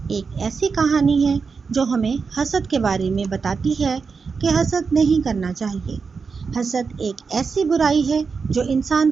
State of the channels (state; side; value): quieter; left; 5.2 dB